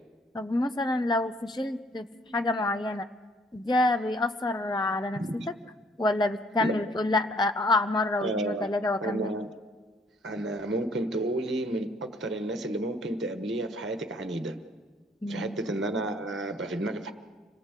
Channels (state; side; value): normal; both; correlation 0.62